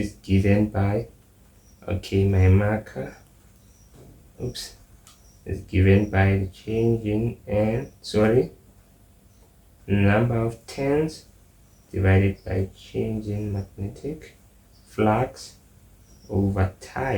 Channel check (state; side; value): identical; both; correlation 1.00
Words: given by, okay, my marker, oops, is given by the change in number of turns divided by change in magnetic flux over